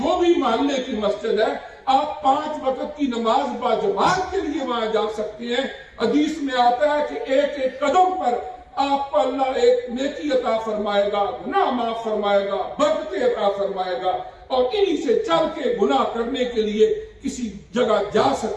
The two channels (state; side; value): identical; both; correlation 1.00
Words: بھی محلے کی مسجد ہے، آپ 5 وقت کی نماز با جماعت کے لیے وہاں جا سکتے ہیں. حدیث میں آتا ہے کہ ایک ایک قدم پر آپ کو اللہ ایک نیکی عطا فرمائے گا, گناہ معاف فرمائے گا, برکتیں عطا فرمائے گا, اور انہی سے چل کے گناہ کرنے کے لیے کسی جگہ جا